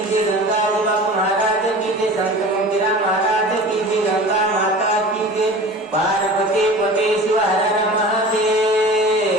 जय गंगा बाबू महाराज की जय संत मोतीराम महाराज की जय गंगा माता की जय पार्वती पते शिव हर नमः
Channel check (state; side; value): normal; both; correlation 0.38